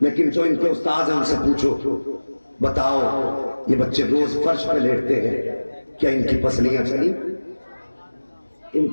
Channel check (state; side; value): inverted; both; correlation -1.00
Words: جو ان کے استاد ہیں ان سے پوچھو بتاؤ یہ بچے روز فرش پہ لیٹتے ہیں، کیا ان کی پسلیاں چلی؟ ان